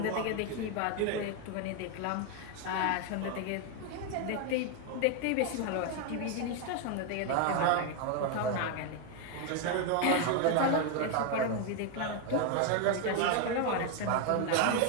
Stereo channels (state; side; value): different; both; correlation 0.01